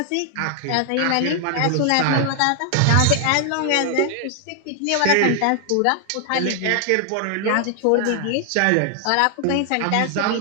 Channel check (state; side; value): different; both; correlation 0.00